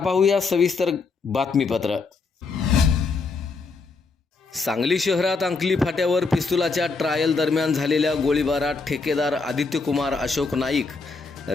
सविस्तर बातमीपत्र। सांगली शहरात अंकली फाट्यावर पिस्तुलाच्या ट्रायल दरम्यान झालेल्या गोळीबारात ठेकेदार आदित्यकुमार अशोक नाईक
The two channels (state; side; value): quieter; right; 4.3 dB